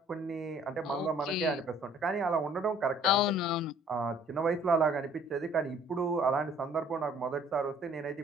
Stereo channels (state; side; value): normal; both; correlation 0.57